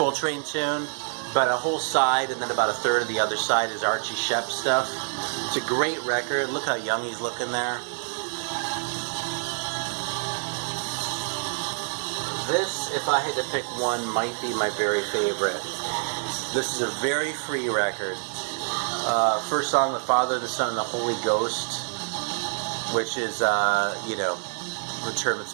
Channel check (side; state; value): left; silent; 60 dB below the other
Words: tune, but a whole side and then about a third of the other side is Archie Shepp stuff. It's a great record. Look how young he's looking there. This, if I had to pick one, might be my very favorite. This is a very free record. First song, The Father, the Son, and the Holy Ghost, which is, you know, the term